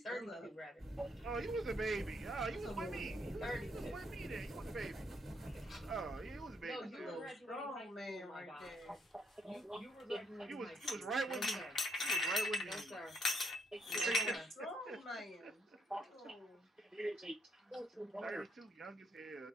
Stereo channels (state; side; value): normal; both; correlation 0.72